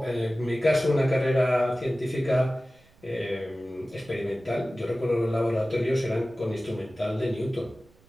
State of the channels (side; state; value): right; noise; rumble, 30 dB below the sound